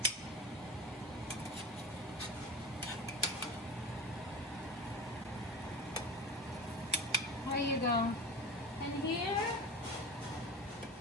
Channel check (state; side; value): normal; both; correlation 0.31